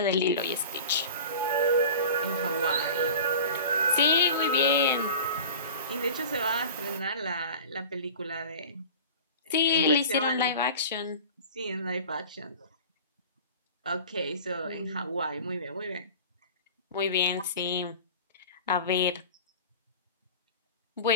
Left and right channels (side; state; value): both; inverted; correlation -0.37